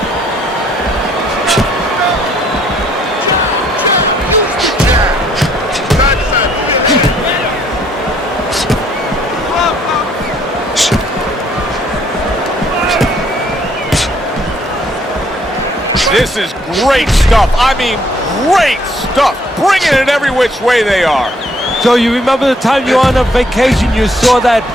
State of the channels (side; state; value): both; normal; correlation 0.65